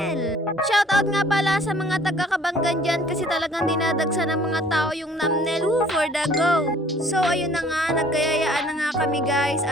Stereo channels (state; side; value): normal; both; correlation 0.55